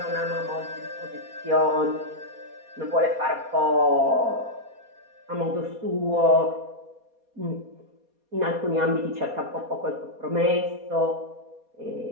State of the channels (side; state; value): left; late; 4.2 ms